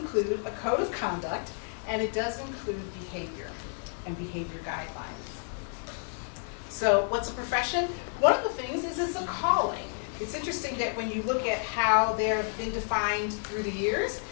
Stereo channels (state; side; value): silent; right; 57 dB below the other